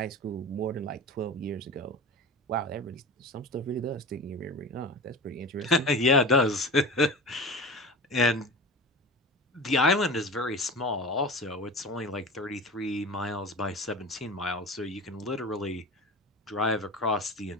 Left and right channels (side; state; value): both; normal; correlation 0.31